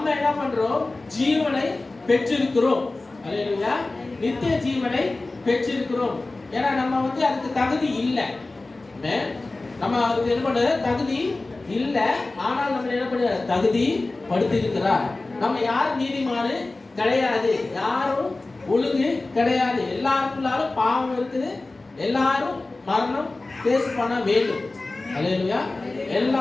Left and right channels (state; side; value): quieter; right; 3.2 dB